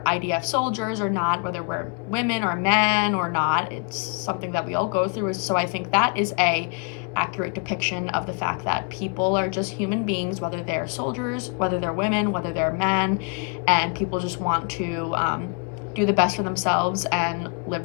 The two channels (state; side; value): quieter; right; 33.6 dB